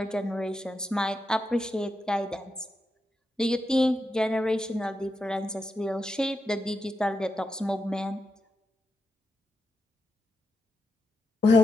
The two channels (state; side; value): normal; both; correlation 0.86